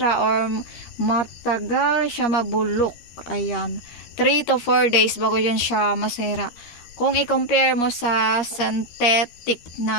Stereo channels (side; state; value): right; late; 13 ms